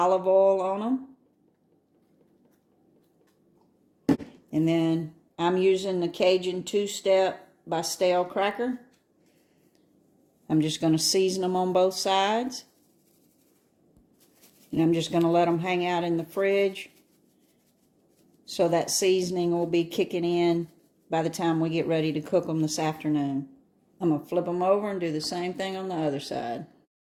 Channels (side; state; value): both; identical; correlation 1.00